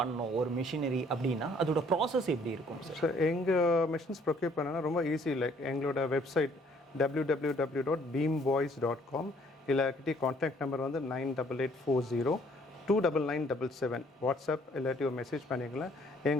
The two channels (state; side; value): normal; both; correlation 0.61